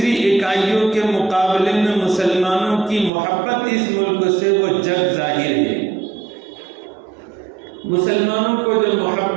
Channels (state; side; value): drops out; left; at 3.1 s